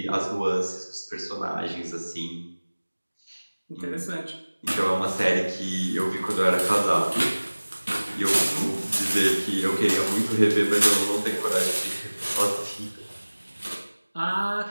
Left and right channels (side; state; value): both; inverted; correlation -1.00